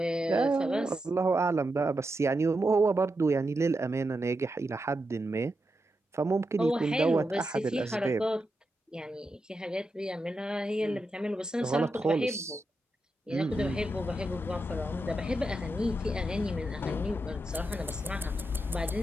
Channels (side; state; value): both; normal; correlation 0.87